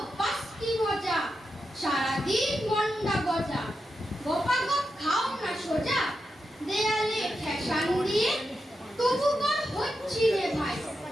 পাস্তি মজা, সারাদিন মন্ডা গজা, গপাগপ খাও না সোজা, দেয়ালে ঠেসান দিয়ে, তবু বল হচ্ছি রে ভাই,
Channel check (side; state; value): both; normal; correlation 0.87